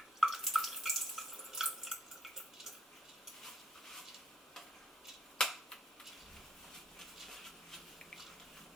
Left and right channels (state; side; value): normal; both; correlation 0.67